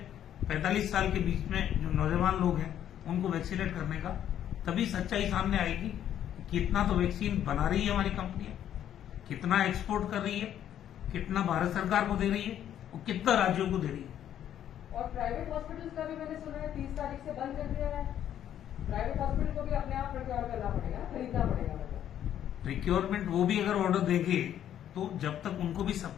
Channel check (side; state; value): right; quieter; 10.6 dB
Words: 45 साल के बीच में जो नौजवान लोग हैं उनको वैक्सीनेट करने का, तभी सच्चाई सामने आएगी। कितना तो वैक्सीन बना रही है हमारी कंपनियां, कितना एक्सपोर्ट कर रही है, कितना भारत सरकार को दे रही है और कितना राज्यों को दे रही है। और प्राइवेट हॉस्पिटल्स का भी मैंने सुना है 30 तारीख से बंद कर दिया है। प्राइवेट हॉस्पिटल को भी अपने आप प्रोक्योर करना पड़ेगा, खरीदना पड़ेगा। मतलब प्रिक्योरमेंट वो भी अगर ऑर्डर देंगे तो जब तक उनको भी